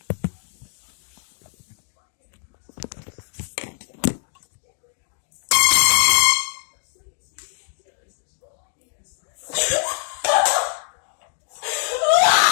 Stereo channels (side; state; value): right; silent; digital silence